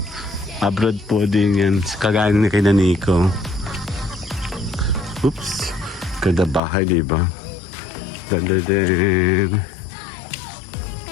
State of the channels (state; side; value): drops out; right; at 6.6 s